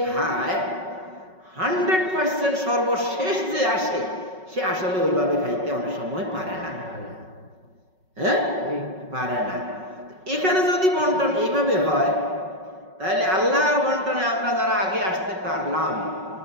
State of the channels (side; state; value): left; late; 5.4 ms